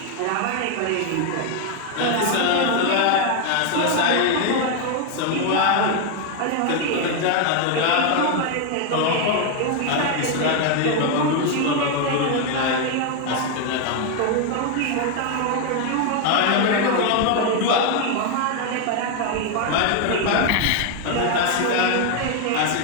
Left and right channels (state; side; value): different; both; correlation 0.01